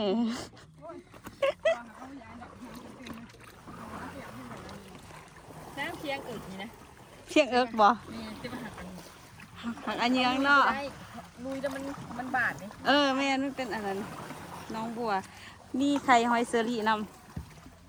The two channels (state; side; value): identical; both; correlation 1.00